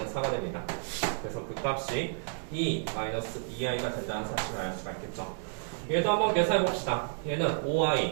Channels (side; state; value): left; silent; 57 dB below the other